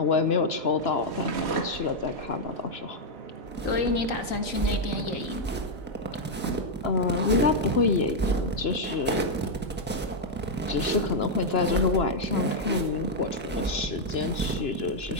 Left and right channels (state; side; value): normal; both; correlation -0.01